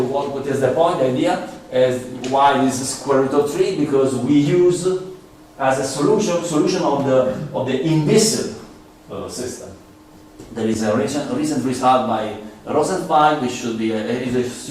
what is the point? The idea is why this square root of 3? Because we use as a solution of the inviscid system. There is a recent result by Rosenfeld, which should be is a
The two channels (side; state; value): both; identical; correlation 1.00